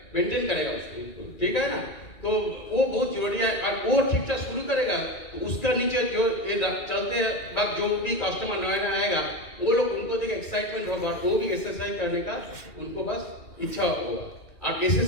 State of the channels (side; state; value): right; late; 2.4 ms